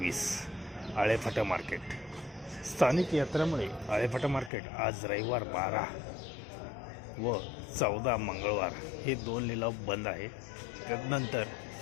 आळेफाटा मार्केट. स्थानिक यात्रामुळे आळेफाटा मार्केट आज रविवार 12 व 14 मंगळवार हे 2 लिलाव बंद आहे. त्यानंतर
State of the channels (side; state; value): right; drops out; at 4.5 s